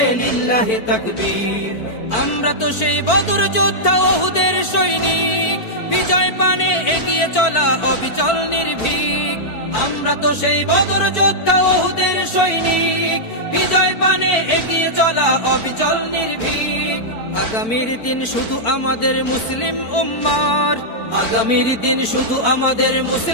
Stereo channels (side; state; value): right; late; 4.5 ms